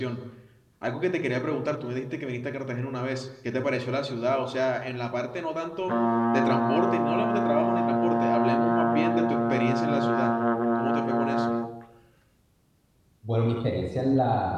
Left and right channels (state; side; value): identical; both; correlation 1.00